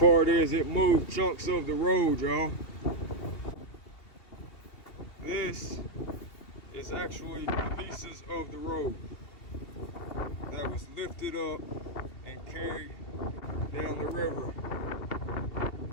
is it moved chunks of the road, y'all. This is actually pieces of the road that was lifted up and carried down the river.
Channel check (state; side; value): late; right; 2.7 ms